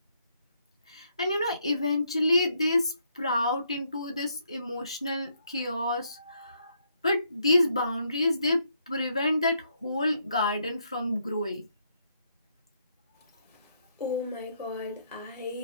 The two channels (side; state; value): both; inverted; correlation -0.74